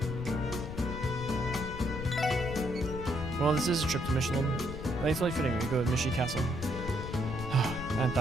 Well, this is a trip to Michelin. Thankfully fitting we go with Mishy Castle. I hadn't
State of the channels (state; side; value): noise; left; rumble, 7 dB below the sound